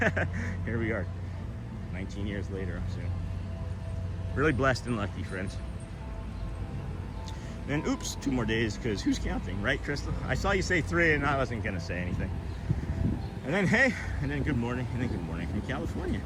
Here we are, 19 years later. So really blessed and lucky, friends. And oops, 2 more days, because who's counting, right, Crystal? I saw you say 3 and I wasn't gonna say anything. And then hey, and then good morning, and then good morning from California.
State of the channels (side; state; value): both; identical; correlation 1.00